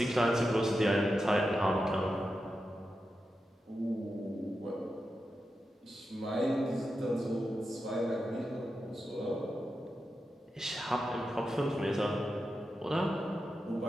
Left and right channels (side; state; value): both; normal; correlation 0.89